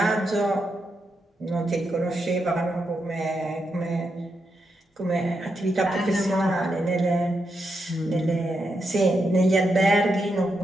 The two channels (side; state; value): both; normal; correlation 0.84